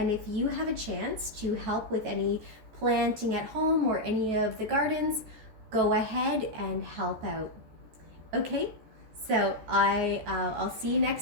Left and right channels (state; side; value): late; left; 14 ms